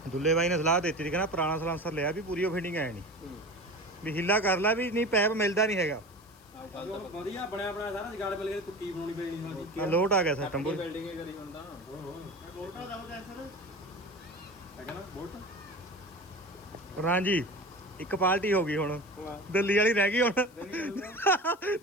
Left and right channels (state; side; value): noise; left; hiss, 27 dB below the sound